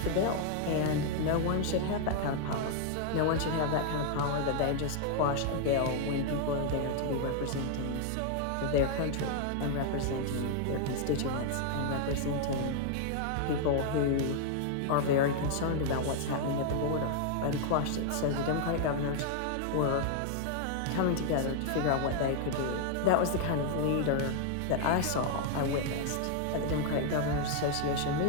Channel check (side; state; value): both; different; correlation 0.00